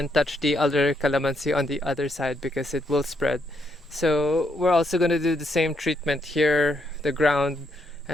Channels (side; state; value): both; normal; correlation 0.76